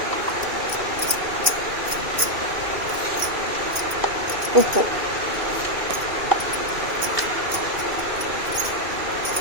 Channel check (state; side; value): late; left; 2.5 ms